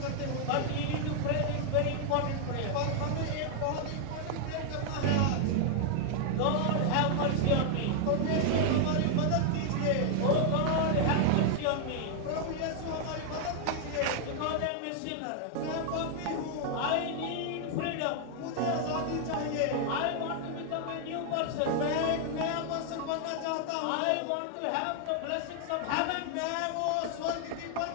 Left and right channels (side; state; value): both; different; correlation 0.00